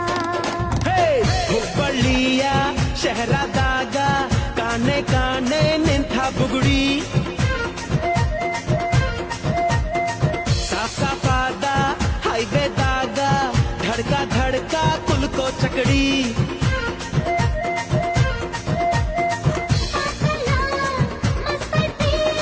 ಹುಬ್ಬಳ್ಳಿಯ ಶಹರದಾಗ ಕಾಣೆ ಕಾಣೆ ನಿಂತ ಬುಗುಡಿ ಸಾಫ್ ಸಾಫಾದ ಹೈವೇದಾಗ ಧಡ್ಕ ಧಡ್ಕ ಕುಲ್ಕೋ ಚಕಡಿ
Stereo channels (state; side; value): identical; both; correlation 1.00